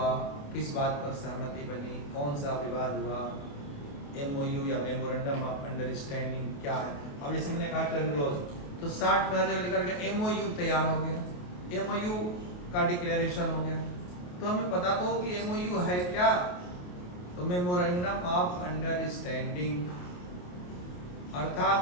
किस बात पर सहमति बनी, कौन सा विवाद हुआ, MOU या मेमोरेंडम ऑफ अंडरस्टैंडिंग क्या है। अब जैसे मैंने कहा टर्मिनोलॉजी, तो 60 में हर जगह लिखा गया MOU तैयार हो गया, MOU का डिक्लेरेशन हो गया, तो हमें पता तो हो कि MOU है क्या, तो मेमोरेंडम ऑफ अंडरस्टैंडिंग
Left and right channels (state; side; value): late; right; 28 ms